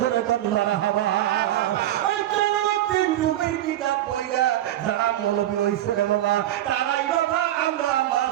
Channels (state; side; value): quieter; left; 13.2 dB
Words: মারহাবা ওই জালালউদ্দিন রুমির কিতাব পড়া যারা মৌলবী হইছে রে বাবা তারাই বাবা আমরা